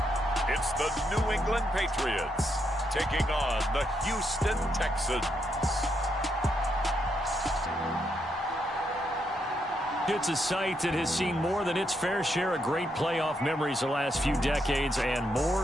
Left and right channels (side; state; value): both; normal; correlation 0.79